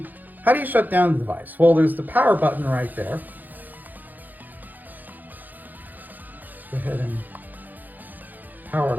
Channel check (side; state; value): left; late; 0.084 ms